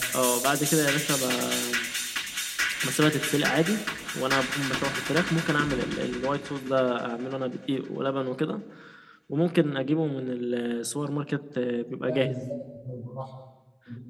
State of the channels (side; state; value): both; identical; correlation 1.00